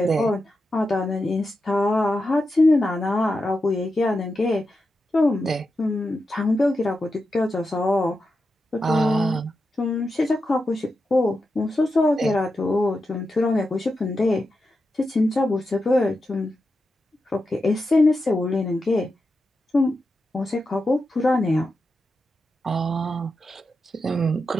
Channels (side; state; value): both; normal; correlation 0.89